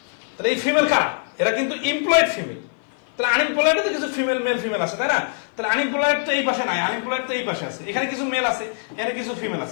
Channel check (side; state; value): right; silent; 56 dB below the other